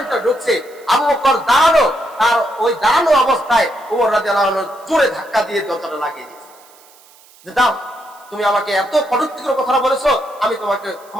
ভিতরে ঢুকছে, আবু বকর দাঁড়ানো, তার ওই দাঁড়ানো অবস্থায় উমর রাদিয়াল্লাহু আনহু জোরে ধাক্কা দিয়ে দরজাটা লাগিয়ে দিয়েছে যে দাও, তুমি আমাকে এত কটূক্তিকর কথা বলেছো, আমি তোমাকে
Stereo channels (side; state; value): right; noise; hiss, 27 dB below the sound